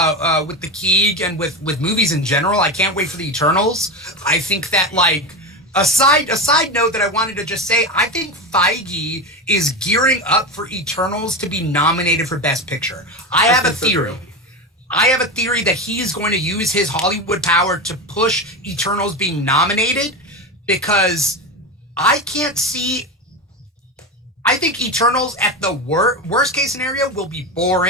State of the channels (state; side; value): normal; both; correlation 0.19